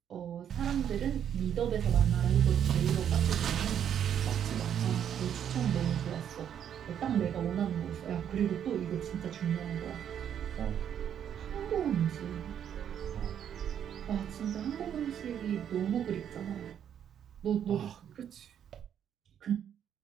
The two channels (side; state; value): left; quieter; 9.2 dB